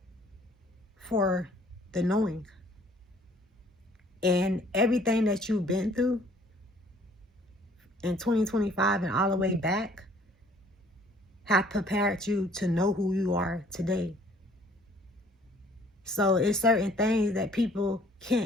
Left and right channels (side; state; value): both; normal; correlation 0.58